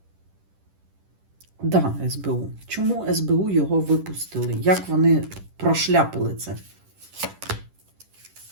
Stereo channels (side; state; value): left; late; 10 ms